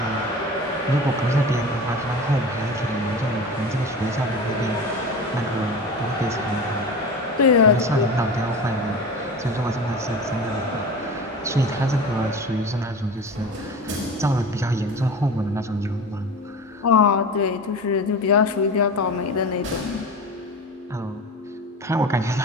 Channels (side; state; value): both; normal; correlation 0.32